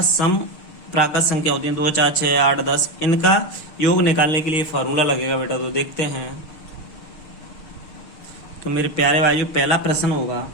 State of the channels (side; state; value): right; late; 6.6 ms